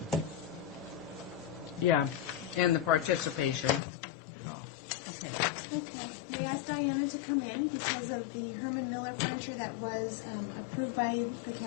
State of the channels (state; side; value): drops out; right; at 3.8 s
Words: Yeah, and the participation. yeah. Okay. We asked Diana to come in because of the Herman Miller furniture that was approved